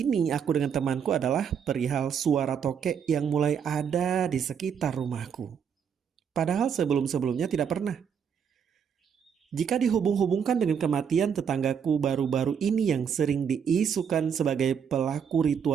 aku dengan temanku adalah perihal suara tokek yang mulai ada di sekitar rumahku. Padahal sebelum-sebelumnya tidak pernah. Jika dihubung-hubungkan dengan kematian tetanggaku baru-baru ini yang sering diisukan sebagai pelaku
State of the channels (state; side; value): quieter; left; 7.4 dB